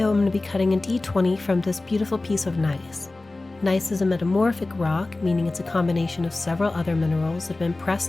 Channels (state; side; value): quieter; right; 3.1 dB